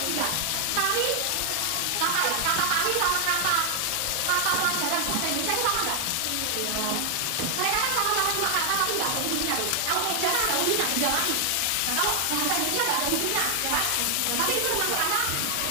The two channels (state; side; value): different; both; correlation 0.00